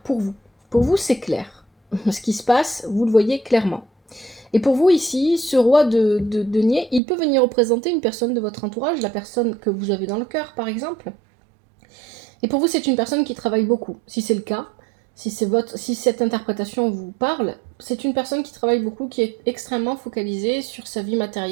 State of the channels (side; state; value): left; drops out; at 7.0 s